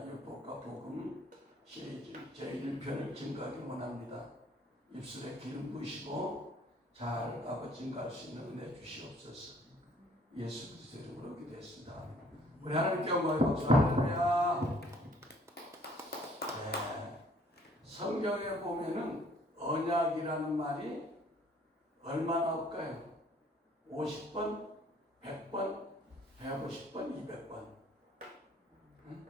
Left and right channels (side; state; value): both; normal; correlation 0.59